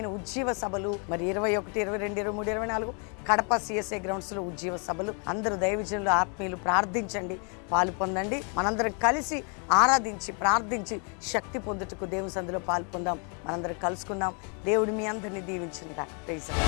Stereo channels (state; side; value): quieter; right; 38.3 dB